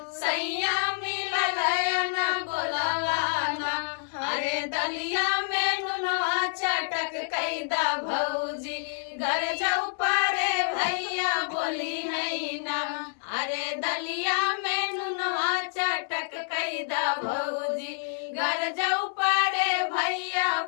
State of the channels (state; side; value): silent; right; 60 dB below the other